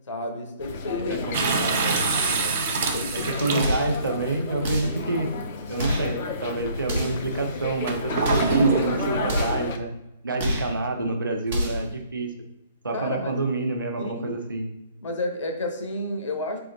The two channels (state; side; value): inverted; both; correlation -0.58